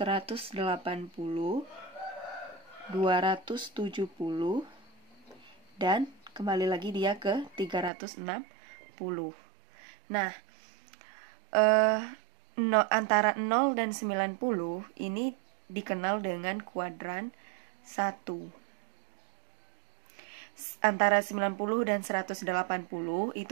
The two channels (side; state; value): left; drops out; at 7.9 s